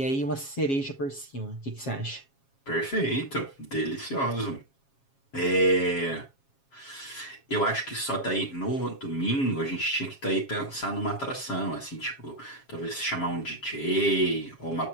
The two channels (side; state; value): right; late; 7.3 ms